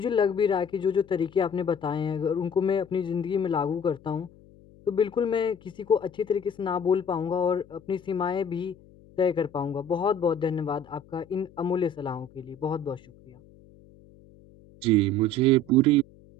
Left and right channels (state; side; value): noise; left; hum, 25 dB below the sound